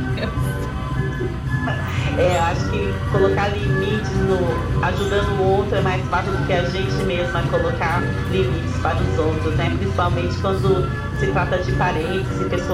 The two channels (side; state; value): both; identical; correlation 1.00